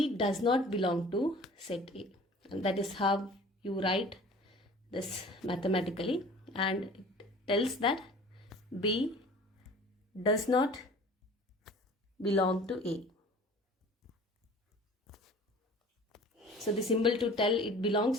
does not belong to set A. And that is how you write this mathematically. And it tells that B does not belong to A. So the symbol to tell it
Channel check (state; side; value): normal; both; correlation 0.45